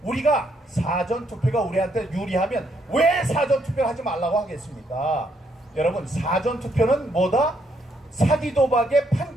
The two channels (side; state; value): both; normal; correlation 0.73